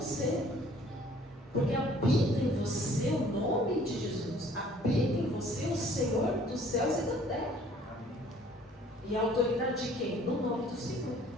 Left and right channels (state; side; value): normal; both; correlation 0.55